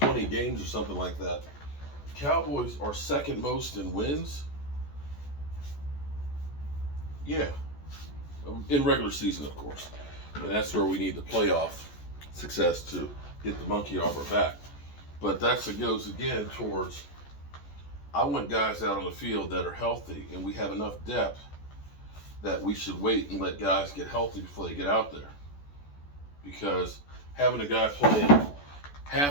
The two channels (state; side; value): late; right; 14 ms